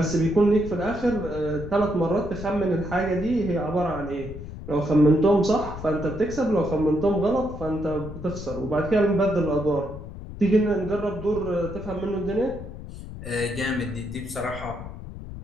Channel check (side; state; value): left; noise; rumble, 11 dB below the sound